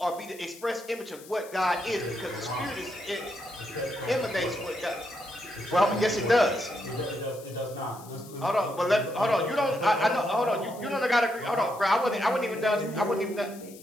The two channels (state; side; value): noise; left; hiss, 20 dB below the sound